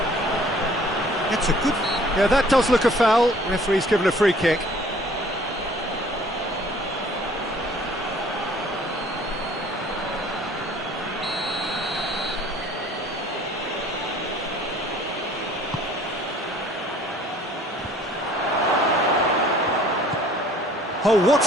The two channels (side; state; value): both; normal; correlation 0.54